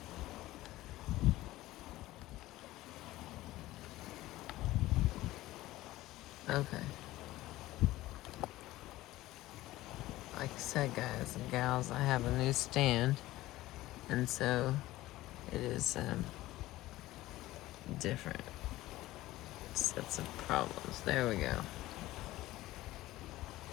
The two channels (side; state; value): right; quieter; 16.9 dB